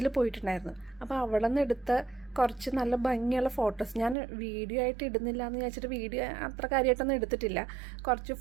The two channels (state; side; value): drops out; left; at 4.2 s